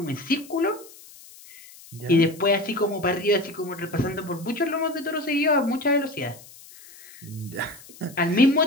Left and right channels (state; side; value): noise; left; hiss, 20 dB below the sound